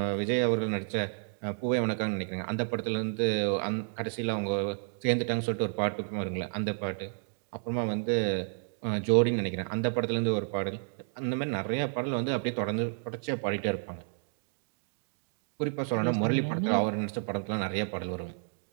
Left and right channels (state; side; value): silent; left; digital silence